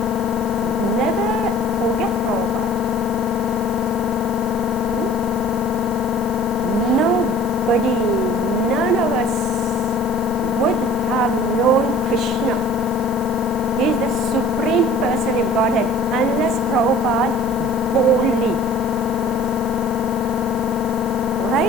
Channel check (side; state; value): right; noise; hiss, 18 dB below the sound